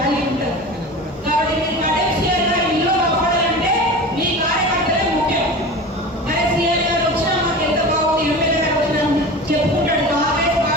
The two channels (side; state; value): both; normal; correlation 0.32